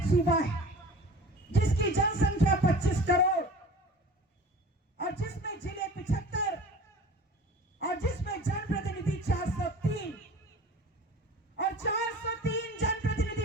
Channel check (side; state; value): both; normal; correlation 0.41